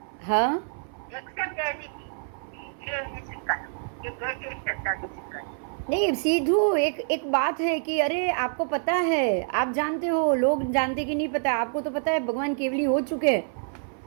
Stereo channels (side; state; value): left; silent; 60 dB below the other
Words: हाँ, नहीं सीधू एक बात है कि अरे आपको पता है, आप जानते हो, लोग जानते कि नहीं पता, आपको तो पता है भगवान केवली हो चुके हैं